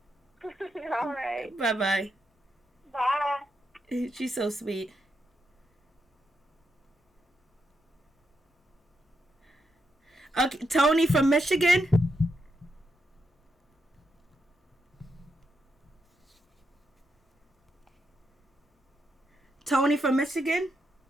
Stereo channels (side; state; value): both; normal; correlation 0.82